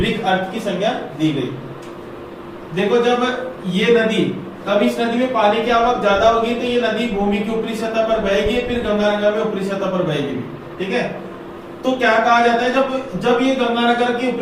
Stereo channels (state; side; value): identical; both; correlation 1.00